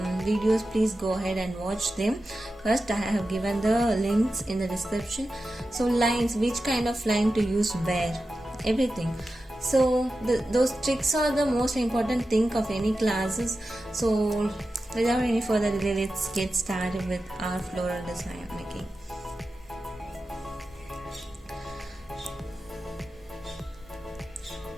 please go ahead and watch them. First, I have given the links in the description. So lines, which kind of line to use where, everything. So those tricks are the most important thing of any classes. So without any further delay, let's get started with our floral design making.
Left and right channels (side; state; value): both; normal; correlation 0.92